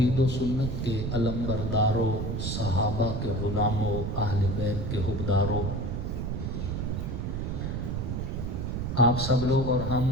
و سنت کے علمبرداروں، صحابہ کے غلاموں، اہل بیت کے حبداروں، آپ سب لوگ اور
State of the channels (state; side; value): noise; right; rumble, 2 dB below the sound